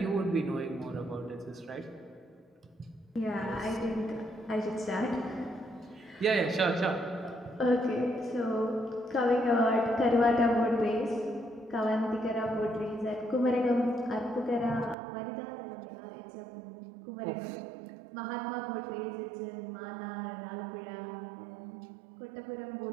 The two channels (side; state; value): left; drops out; at 15.0 s